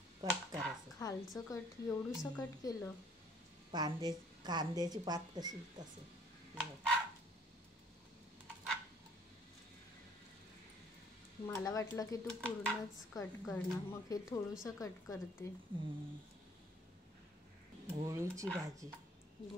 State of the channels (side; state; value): both; normal; correlation 0.59